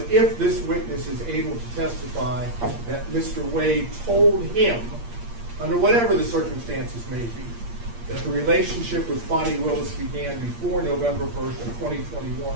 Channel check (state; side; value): late; left; 8.6 ms